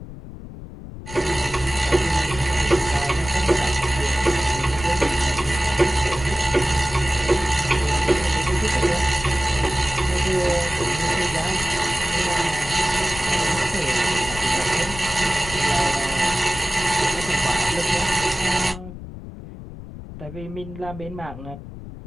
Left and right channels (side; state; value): left; noise; rumble, 13 dB below the sound